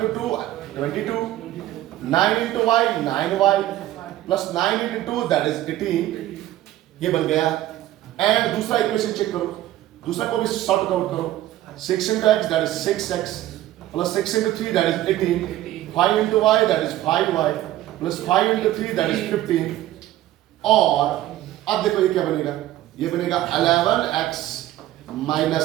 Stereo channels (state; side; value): quieter; left; 14.3 dB